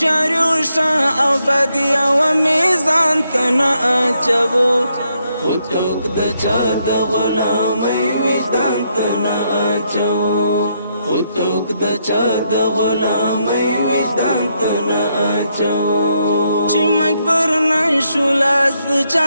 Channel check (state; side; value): inverted; both; correlation -0.77